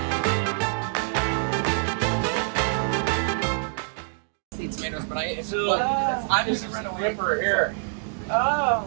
Tomatoes, but I'm just This is the ripper here.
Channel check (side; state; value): left; silent; digital silence